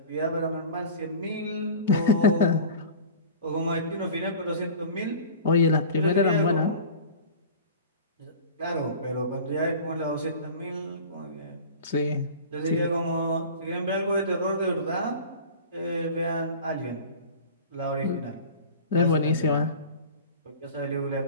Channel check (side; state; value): both; inverted; correlation -0.38